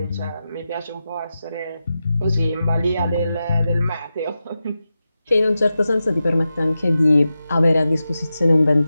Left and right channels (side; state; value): both; inverted; correlation -0.91